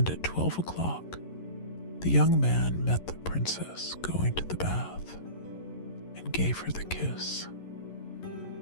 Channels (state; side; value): late; right; 11 ms